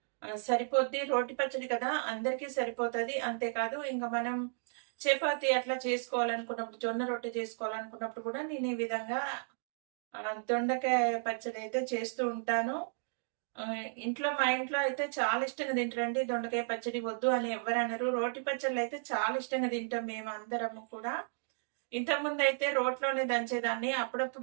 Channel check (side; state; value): left; silent; digital silence